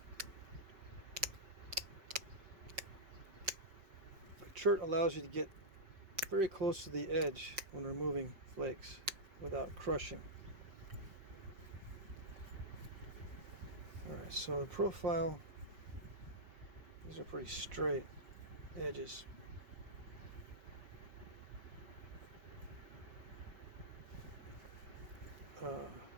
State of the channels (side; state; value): left; late; 5.5 ms